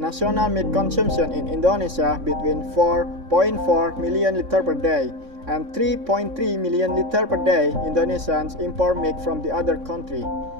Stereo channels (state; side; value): late; left; 3.6 ms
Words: milk consumption in Indonesia between 4.4 million liters per day and 3.3 million liters per day Indonesians import milk from the other country.